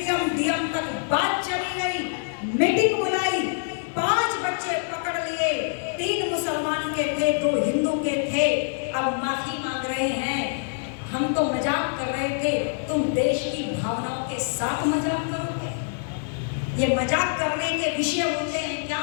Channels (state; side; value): silent; right; digital silence